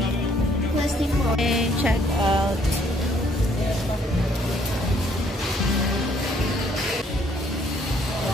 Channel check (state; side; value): normal; both; correlation 0.65